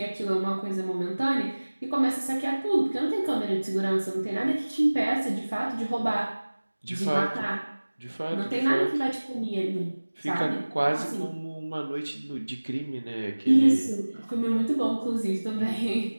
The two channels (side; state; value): both; inverted; correlation -1.00